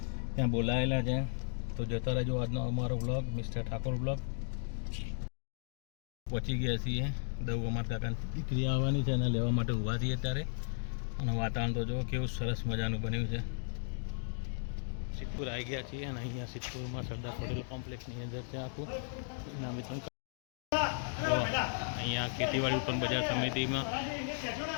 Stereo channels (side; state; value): right; silent; digital silence